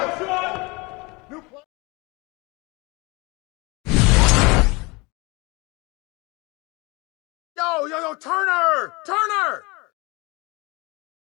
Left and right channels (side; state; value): right; quieter; 25.9 dB